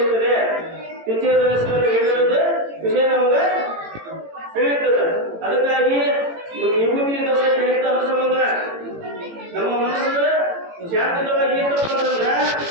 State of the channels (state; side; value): late; left; 18 ms